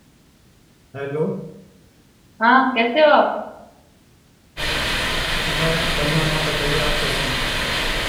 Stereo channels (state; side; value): identical; both; correlation 1.00